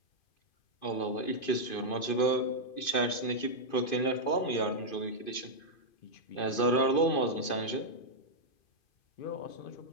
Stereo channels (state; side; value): late; right; 2.5 ms